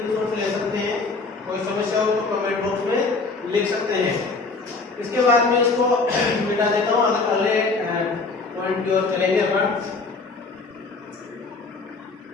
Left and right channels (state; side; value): quieter; right; 3.9 dB